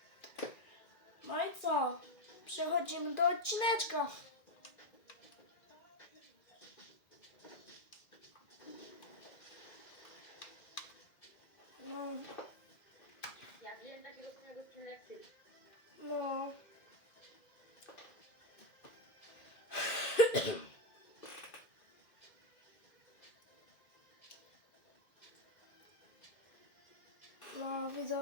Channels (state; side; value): late; right; 2.1 ms